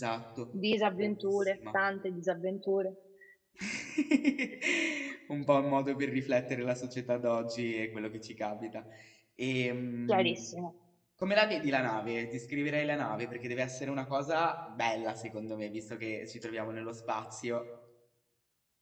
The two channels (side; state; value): both; identical; correlation 1.00